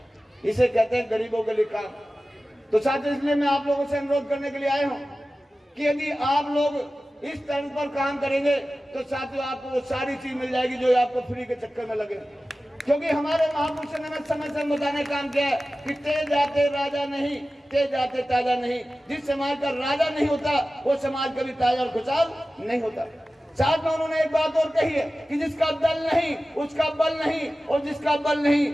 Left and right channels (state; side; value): normal; both; correlation 0.95